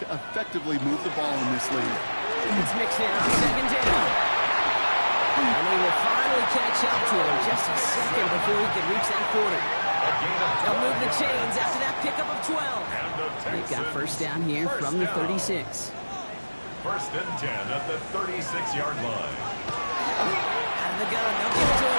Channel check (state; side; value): inverted; both; correlation -1.00